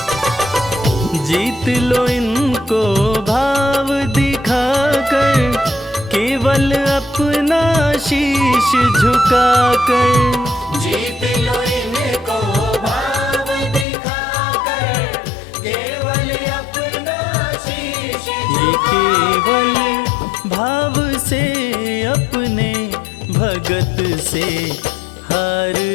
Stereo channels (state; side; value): drops out; right; at 13.9 s